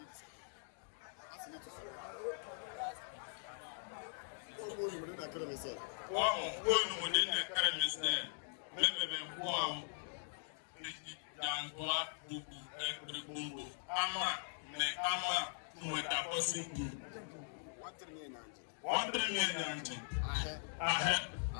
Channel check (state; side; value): silent; right; digital silence